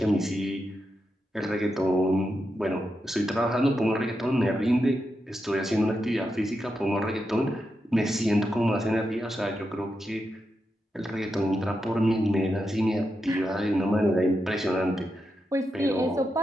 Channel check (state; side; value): normal; both; correlation 0.86